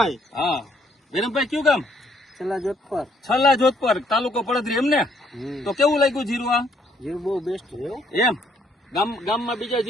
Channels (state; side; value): normal; both; correlation 0.68